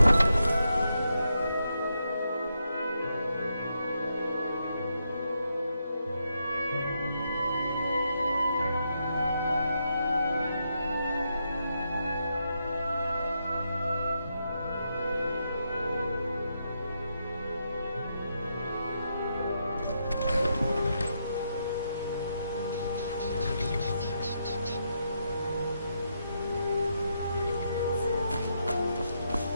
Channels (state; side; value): inverted; both; correlation -0.81